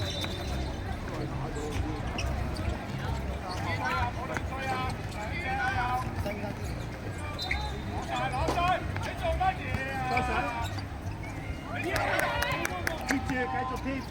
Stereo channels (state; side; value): identical; both; correlation 1.00